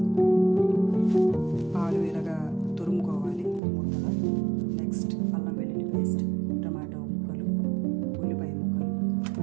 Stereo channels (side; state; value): left; drops out; at 3.6 s